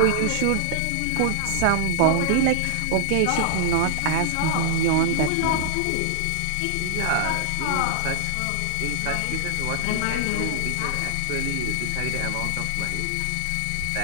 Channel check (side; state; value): both; different; correlation -0.01